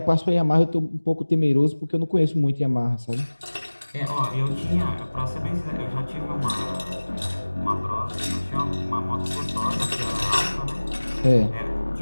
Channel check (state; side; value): inverted; both; correlation -1.00